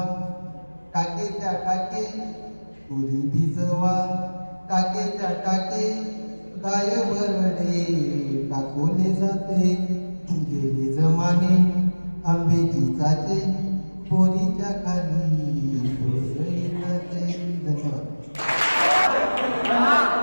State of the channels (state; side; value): inverted; both; correlation -1.00